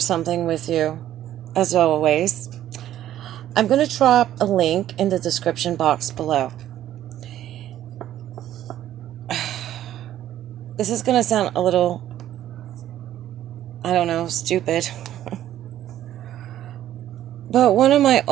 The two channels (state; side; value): quieter; left; 12.3 dB